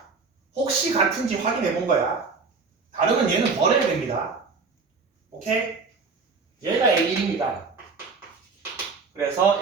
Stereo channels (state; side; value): quieter; left; 4.6 dB